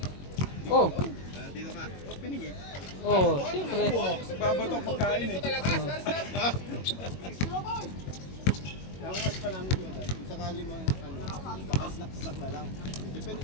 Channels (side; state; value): right; late; 21 ms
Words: Oh. Dito ka. Opening eh. Oh, siyempre. Babato ang pagkain eh. Ang mas pa namin yun. Kung sakali mo, baka snack na lang. Depende